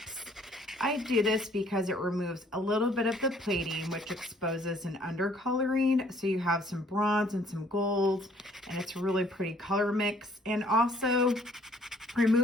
I do this because it removes a little bit of the plating, which exposes an undercoloring. So you have some bronze and some gold, and it's a really pretty color mix. And also,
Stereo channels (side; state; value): both; normal; correlation 0.61